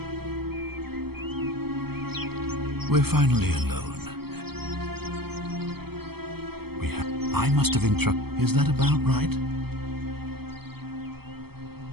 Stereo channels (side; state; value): left; late; 0.96 ms